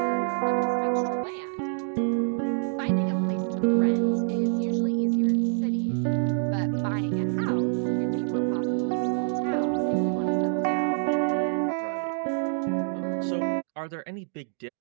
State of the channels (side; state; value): left; silent; digital silence